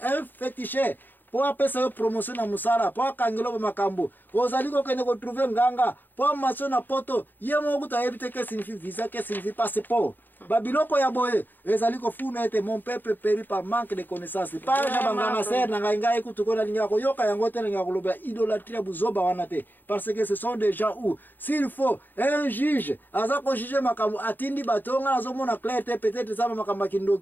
féticheur po apesa yo promotion na musala po akangelo ba makambo ozali kokende ko trouver nganga po maso na poto ye moko kutu ayebi te que signifie visa que signifie passeport babiloko ya boye ezali kofuna ete mon peuple périt par manque de connaissances pas ja banganga ser na ngai kutu kona linga ko yoka yango te linga koloba idolâtrie buzoba wana te parce que ce sont des gens où s'il faut un juge aza ko juger makambo atindi batonga azomona clair te peut-être ça makambo kindo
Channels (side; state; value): right; late; 0.089 ms